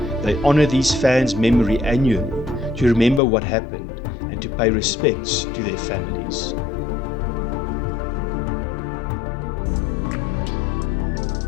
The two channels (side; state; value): right; drops out; at 3.2 s